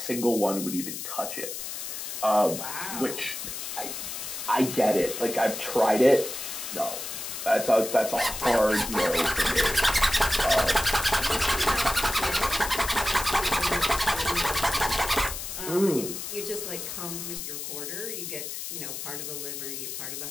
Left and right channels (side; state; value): left; noise; hiss, 7 dB below the sound